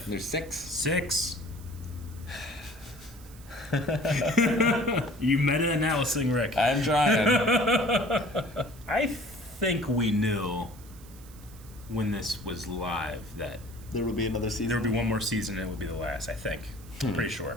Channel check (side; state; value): right; noise; hiss, 22 dB below the sound